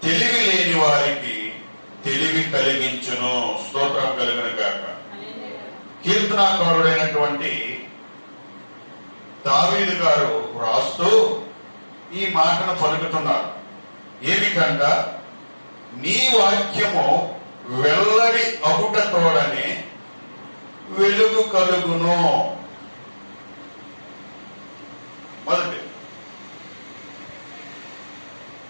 తెలివి లేని వారికి తెలివి కలిగించును. స్తోత్రం కలుగును గాక. కీర్తనాకారుడైనటువంటి దావీదు గారు రాస్తూ ఈ మాటను పలుకుతున్నారు. ఏమిటంట? నీ వాక్యము వెల్లడి అగుట తోడని వెలుగు కలుగును. మొదటి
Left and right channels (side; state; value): both; inverted; correlation -1.00